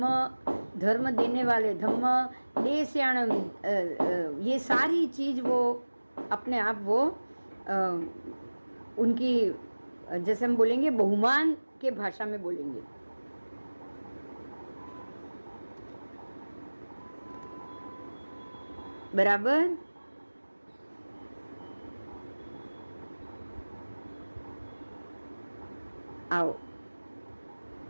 धर्म देने वाले, धम्म देस्याणम, ये सारी चीज वो अपने आप वो उनकी, जैसे हम बोलेंगे बहुमान के भाषा में बोलेंगे। बराबर? आओ,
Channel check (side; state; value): both; inverted; correlation -1.00